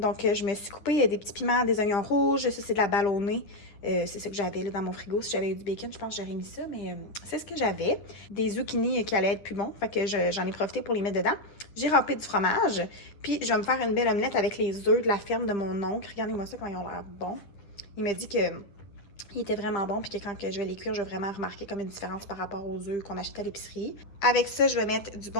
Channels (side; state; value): right; late; 10 ms